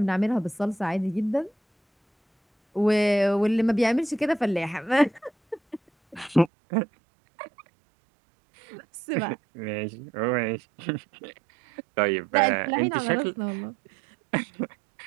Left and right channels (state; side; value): drops out; left; at 6.5 s